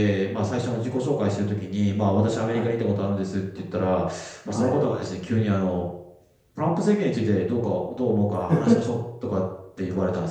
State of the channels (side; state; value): both; identical; correlation 1.00